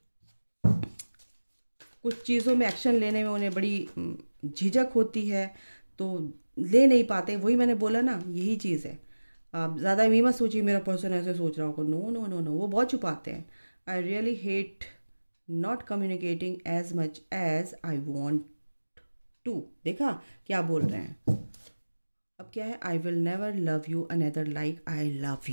कुछ चीज़ों में एक्शन लेने में उन्हें बड़ी झिझक होती है, तो ले नहीं पाते। वही मैंने बोला ना, यही चीज़ है। आप ज़्यादा ये मत सोचिए मेरा पर्सन ऐसे सोच रहा होगा, नो नो नो नो, वो बहुत छुपाते हैं। I really hate not communicating as much as I want to. देखा क्या बोल रहे हैं, अब क्या है, I will never love you another like I love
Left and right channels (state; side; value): inverted; both; correlation -1.00